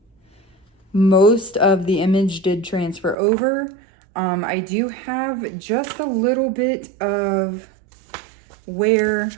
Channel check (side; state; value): left; drops out; at 3.2 s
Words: most of the image did transfer over. I do have just a little bit of where,